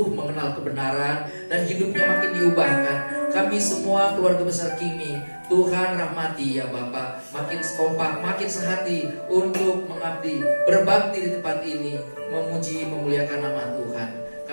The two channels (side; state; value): both; inverted; correlation -1.00